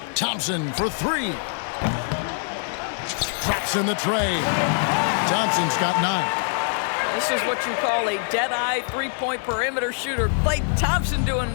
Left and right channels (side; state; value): right; silent; digital silence